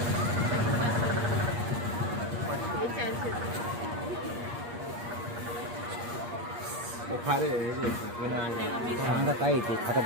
खारे सांगा काय येते खाता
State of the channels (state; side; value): late; left; 8.5 ms